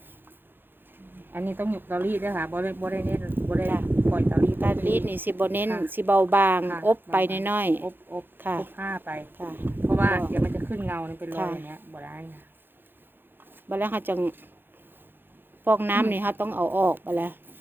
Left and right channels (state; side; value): late; left; 0.099 ms